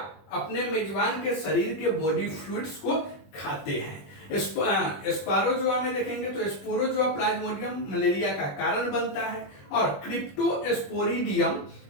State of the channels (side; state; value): right; late; 21 ms